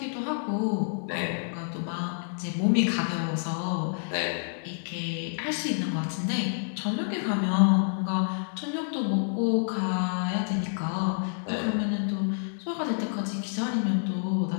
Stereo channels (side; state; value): right; silent; digital silence